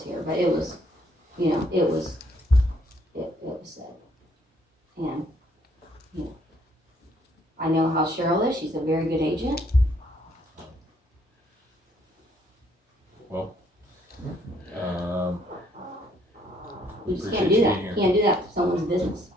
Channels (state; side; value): normal; both; correlation 0.67